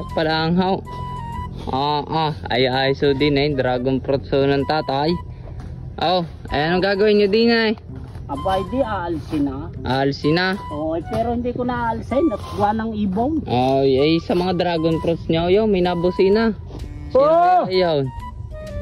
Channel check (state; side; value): identical; both; correlation 1.00